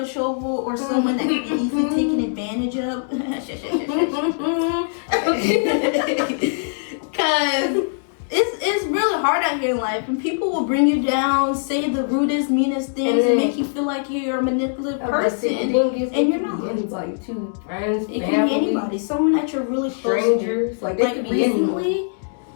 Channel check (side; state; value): right; silent; digital silence